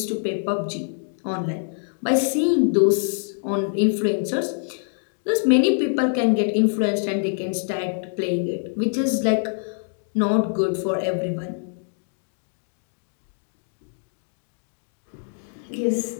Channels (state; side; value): silent; right; digital silence